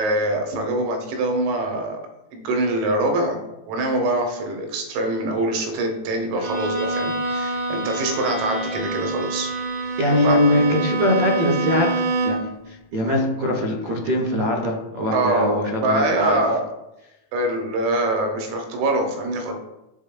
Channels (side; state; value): left; late; 18 ms